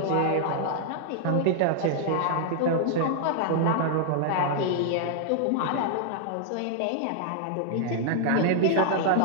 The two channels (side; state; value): both; different; correlation 0.00